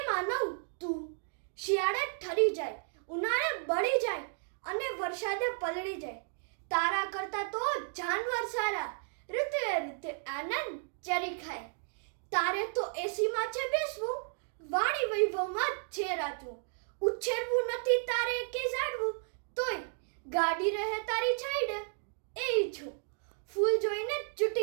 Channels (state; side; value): silent; left; digital silence